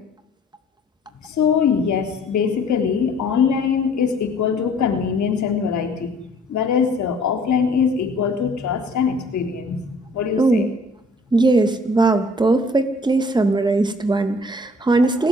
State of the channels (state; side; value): normal; both; correlation 0.55